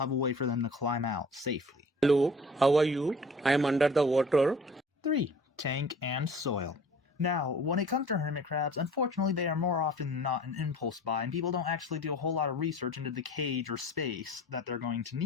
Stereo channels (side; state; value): both; normal; correlation 0.46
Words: a way for them to climb out safely. Hello, how are you? I am under the water. 3. Tank and soil. Now, when it comes to hermit crabs, unfortunately they are more often than not an impulse buy, and people don't actually do a whole lot of research into the cage or space that they're going to